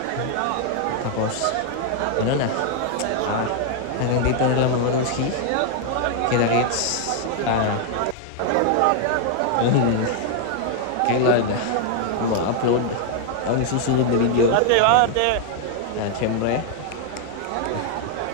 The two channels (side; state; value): both; different; correlation 0.00